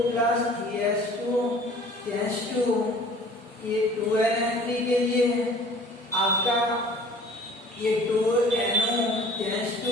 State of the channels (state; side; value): normal; both; correlation 0.49